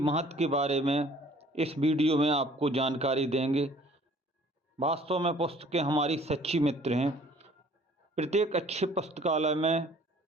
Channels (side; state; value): both; normal; correlation 0.54